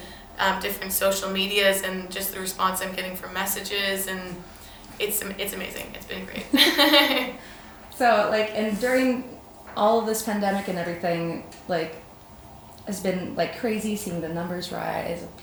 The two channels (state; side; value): identical; both; correlation 1.00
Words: different social medias and just the response I'm getting from messages, and it's amazing. It's been great. So and during all of this pandemic and everything, has been crazy seeing the numbers rise of